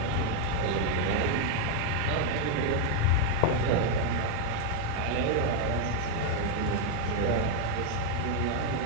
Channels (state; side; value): different; both; correlation 0.01